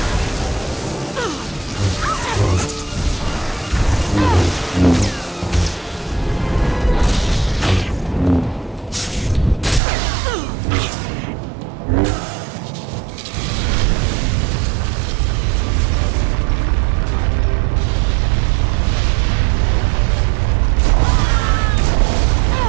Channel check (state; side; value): drops out; left; at 9.8 s